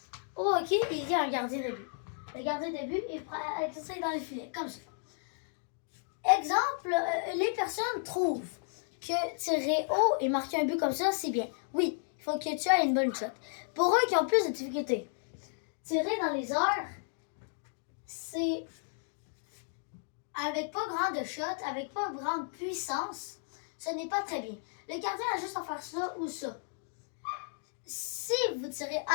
hockey, il y a un gardien de but. Le gardien de but est prêt à exercer dans les filets, comme ça. Exemple, les personnes trouvent que tirer haut et marquer un but comme ça, c'est bien. Oui, il faut que tu aies une bonne shot. Pour eux qui ont plus de difficultés, tirer dans les airs, c'est avec pas grande shot, avec pas grande puissance, ce n'est pas très bien. Le gardien a juste à faire ça ou ça. Si vous tirez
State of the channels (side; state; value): right; silent; digital silence